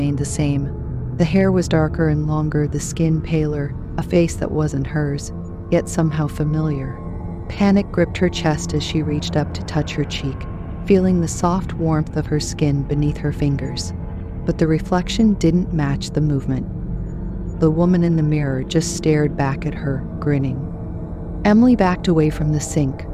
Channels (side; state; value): both; identical; correlation 1.00